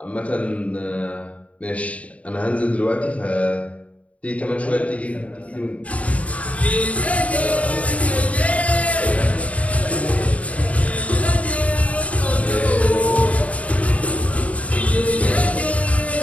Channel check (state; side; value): late; right; 0.067 ms